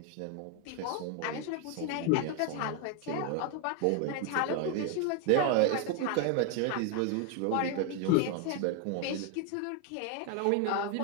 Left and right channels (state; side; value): different; both; correlation 0.01